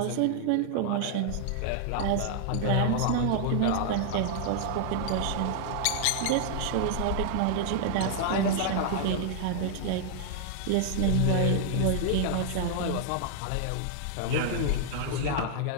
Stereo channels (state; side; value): different; both; correlation -0.01